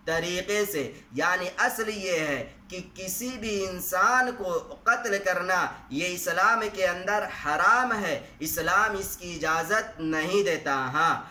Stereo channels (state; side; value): identical; both; correlation 1.00